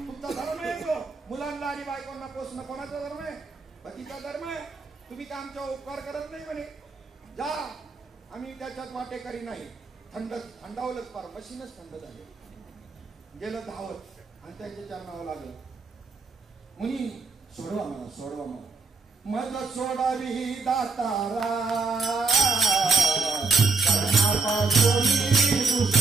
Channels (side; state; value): left; quieter; 4.2 dB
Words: धर्म आहे तो. मुलांना आणि बायकोंना पोसणं कोणाचा धर्म आहे? पतीचा धर्म आहे. तुम्ही का आमचा उपकार करत नाही म्हणे, जा आम्ही त्याच्यात वाटेकरी नाही. थंडावलंच पार, मशीनच थंड झाले, गेलं धावत आणि त्याच्या चरणावं लागलं. मुनी सोडवा मला, सोडवा मला, मज सोडावी दातारा, कर्णापासून